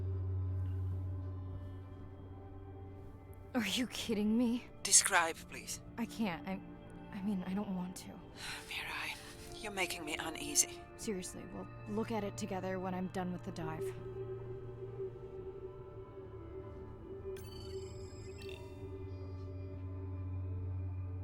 Are you kidding me? Describe, please. I can't. I mean, I don't want to. Mirai, you're making me uneasy. Seriously, we'll look at it together when I'm done with the dive.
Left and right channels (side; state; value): both; identical; correlation 1.00